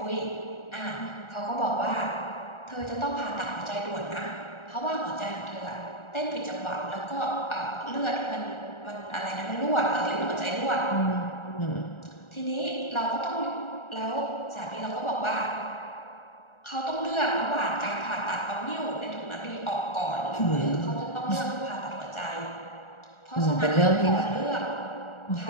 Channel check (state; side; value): late; right; 1.4 ms